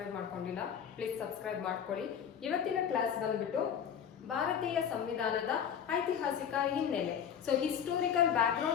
ಮಾಡ್ಕೊಂಡಿಲ್ಲ ಪ್ಲೀಸ್ ಸಬ್ಸ್ಕ್ರೈಬ್ ಮಾಡ್ಕೊಳ್ಳಿ. ಇವತ್ತಿನ ಕ್ಲಾಸ್ ಬಂದ್ಬಿಟ್ಟು ಭಾರತೀಯ ಸಂವಿಧಾನದ ಐತಿಹಾಸಿಕ ಹಿನ್ನೆಲೆ. So historical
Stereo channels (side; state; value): right; quieter; 8.2 dB